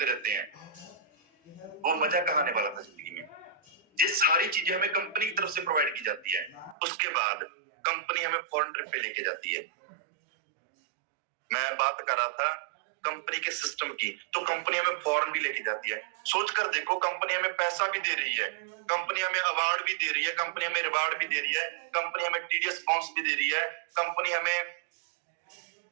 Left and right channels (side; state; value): left; drops out; at 6.8 s